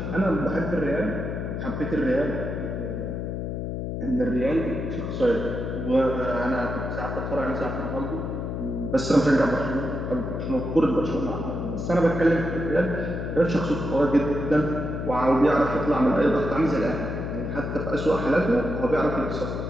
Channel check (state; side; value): noise; left; hum, 4 dB below the sound